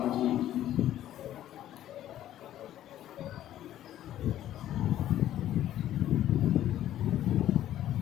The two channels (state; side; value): quieter; right; 12.4 dB